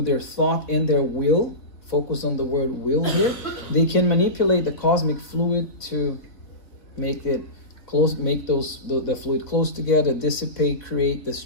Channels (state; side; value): late; right; 3.7 ms